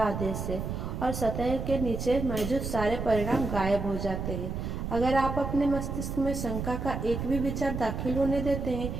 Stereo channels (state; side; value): noise; right; rumble, 4 dB below the sound